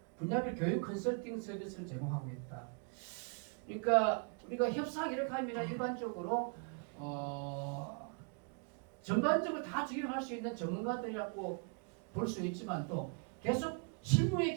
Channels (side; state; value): left; quieter; 37.4 dB